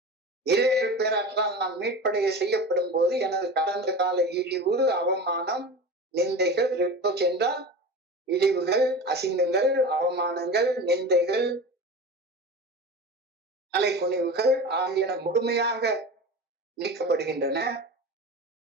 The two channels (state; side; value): normal; both; correlation 0.31